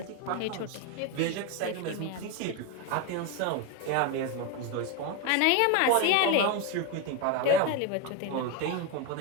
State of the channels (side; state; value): both; different; correlation 0.02